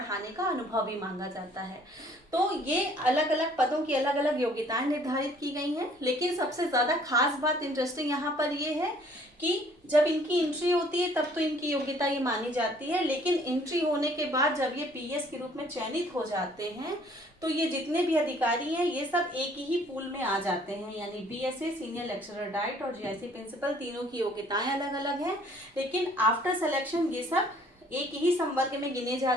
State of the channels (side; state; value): both; normal; correlation 0.58